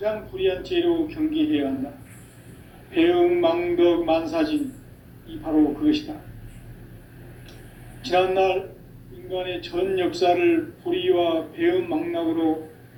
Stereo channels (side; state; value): both; identical; correlation 1.00